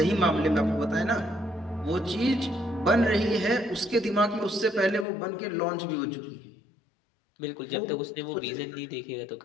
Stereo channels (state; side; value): drops out; right; at 5.1 s